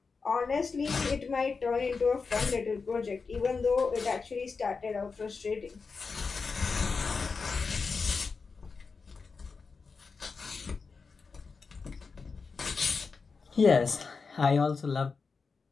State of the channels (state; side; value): quieter; right; 4.8 dB